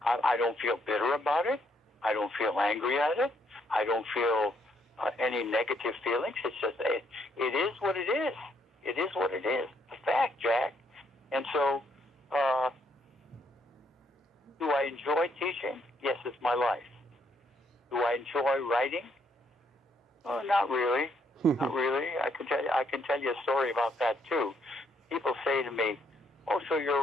I don't feel bitter about it. I don't feel angry at it. I don't feel any negative feelings. It's just, it is what it is. It is what it is. It's a fact, Jack. And so, do I enjoy teaching? Yes, it's my life. Do I enjoy writing? Oh, not really. Not really. I can tell you a story about that too. People say to me, "Oh, so you're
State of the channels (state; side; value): normal; both; correlation 0.72